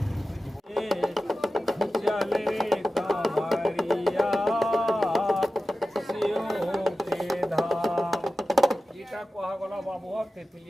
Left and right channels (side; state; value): both; normal; correlation 0.94